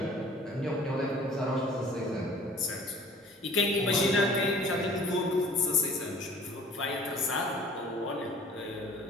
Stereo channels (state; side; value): normal; both; correlation 0.49